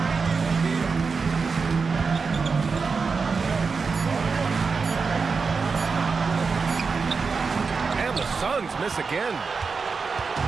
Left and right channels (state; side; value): quieter; left; 4.9 dB